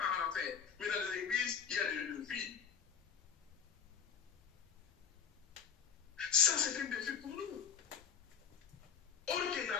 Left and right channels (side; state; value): right; quieter; 7.2 dB